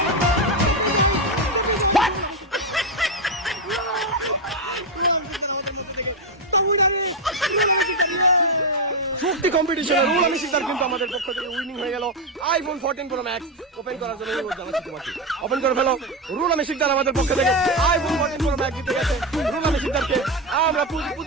শক্তি কম্পিটিশনে রুহুল আমিন শিকদার কিন্তু আমাদের পক্ষ থেকে উইনিং হয়ে গেল আইফোন 14 প্রো ম্যাক্স ওপেন করার জন্য ওপেন করে ফেলো রুহুল আমিন শিকদার আমাদের পক্ষ থেকে আইফোন 14 প্রো ম্যাক্স জিতে গেছে রুহুল আমিন শিকদারকে আমরা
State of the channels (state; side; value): normal; both; correlation 0.08